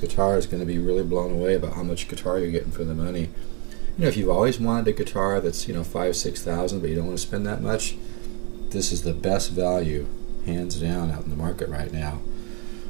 is going to be really blown away about how much guitar you're getting for the money. You know, if you've always wanted a guitar that's, you know, $5,000-$6,000, but you don't want to spend that much, this is the best value, hands down, out in the market right now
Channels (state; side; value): quieter; left; 34.5 dB